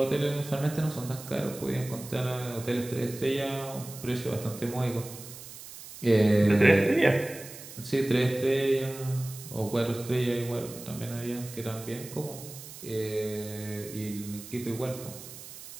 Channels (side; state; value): right; noise; hiss, 14 dB below the sound